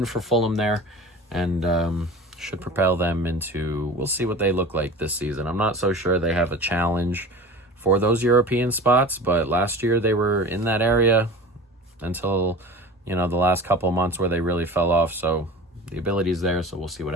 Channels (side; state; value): both; normal; correlation 0.36